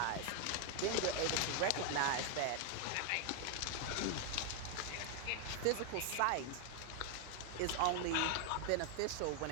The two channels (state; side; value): different; both; correlation 0.00